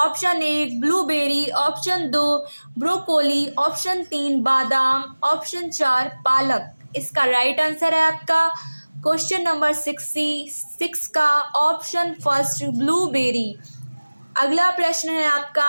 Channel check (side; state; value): both; inverted; correlation -1.00